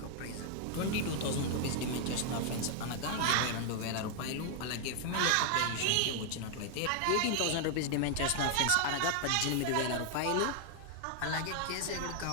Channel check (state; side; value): different; both; correlation 0.00